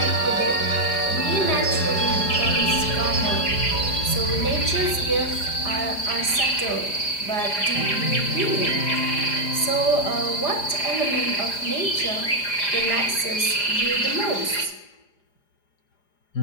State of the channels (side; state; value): right; late; 4.9 ms